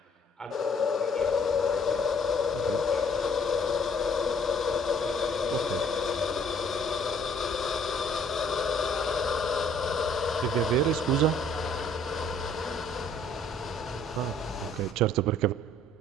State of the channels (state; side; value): normal; both; correlation 0.60